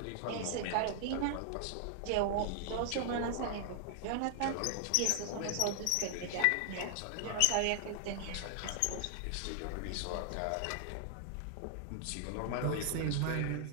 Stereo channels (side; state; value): both; different; correlation 0.00